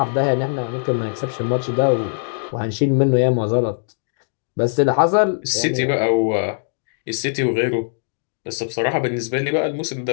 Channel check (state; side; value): silent; right; digital silence